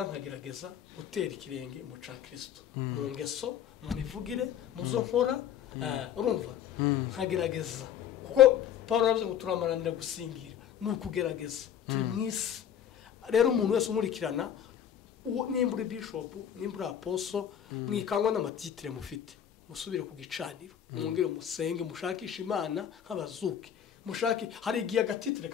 nkagerageza gutera ikirenge mu ca Kristo mu ngeso mu mivugire mu zo nkora urumva nkagerageza kuko Paul yavuze ngo turamaranira gusingira nukugerageza turi mwisi rero umuntu wese umurikirana nimbura bishop nimbura apostle mwikangwa n'amatitire mufite musubire ku gicaniro mwongere musenge mushakisha imana nk'abazuki mushaki hari igihe agatitire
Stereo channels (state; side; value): quieter; right; 9.5 dB